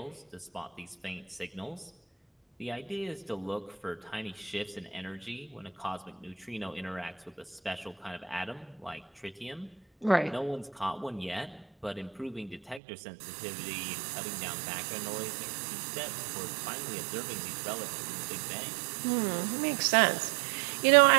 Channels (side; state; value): left; drops out; at 12.8 s